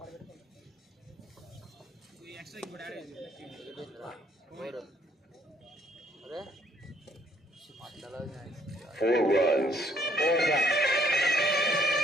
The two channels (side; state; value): both; normal; correlation 0.65